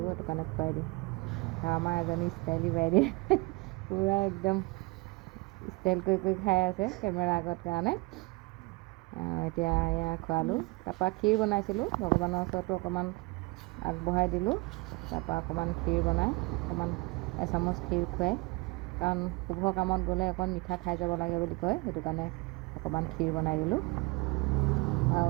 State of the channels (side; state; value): left; quieter; 25.6 dB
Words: সেইটো কাৰণে খুৱাই দিওঁ। আৰু আমাৰ এজনী ষ্টাইলী বাইদেউ পূৰা একদম ষ্টাইল কৰি কৰি খাই আছে কেমেৰা আগত কাৰণে। এতিয়া এয়া খোৱালোঁ। তাৰপৰা ক্ষীৰ বনাইছিলোঁ, ভগৱানৰ ওচৰতো অকণমান আগবঢ়াই দিলোঁ। তাৰপৰা অকণমান ক্ষীৰ বনাই অকণমান এচামুচ ক্ষীৰ খুৱাই, কাৰণ শুভ কামত গ'লে অকণ মিঠা খাই যাব লাগে বুলি কয়, সেইটো কাৰণে অকণমান ক্ষীৰ বনাই দিলোঁ। আৰু